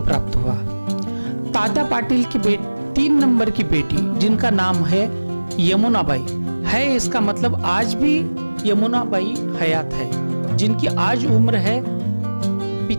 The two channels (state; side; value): inverted; both; correlation -1.00